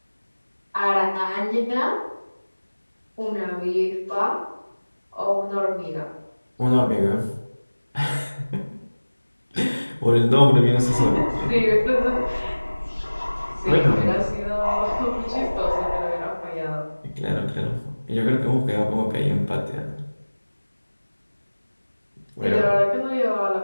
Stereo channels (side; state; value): both; inverted; correlation -1.00